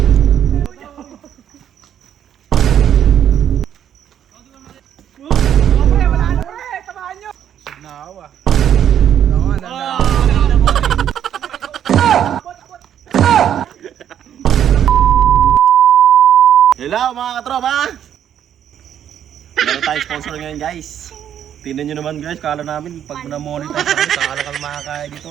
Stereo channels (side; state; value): left; quieter; 9.8 dB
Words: Pre, wala na pre, tamaan nyo. Naawa. Hello mga katropa! Meron tayong sponsor ngayon guys. Tingnan nyo naman guys, kala namin pag na-monetize kami, kala ka makakain